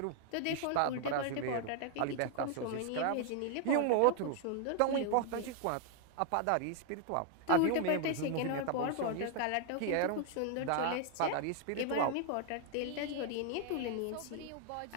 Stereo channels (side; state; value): both; different; correlation 0.00